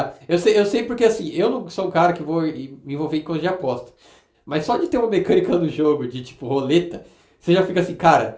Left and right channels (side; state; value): both; identical; correlation 1.00